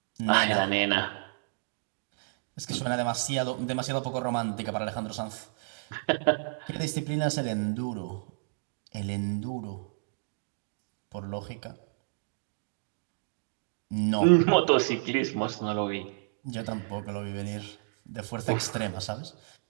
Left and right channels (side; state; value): left; silent; digital silence